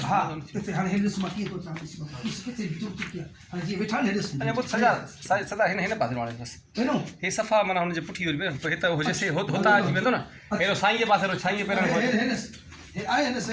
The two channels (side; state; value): both; identical; correlation 1.00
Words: हा किथे हाणे हे ॾिस मां कीअं थो चवां ॾिस किथे बीठो किथे हाणे जीअं वेठा न ॾिस अरे वो सजा सदा हिन पासे वाले बस हेनो हे सफ़ा माना हुनजे पुठी वरी पे हिते हुजे से होता अची वेंदो न हेरो साईं जे पासे साईं जे पेरनि हे ॾिस हे आहे न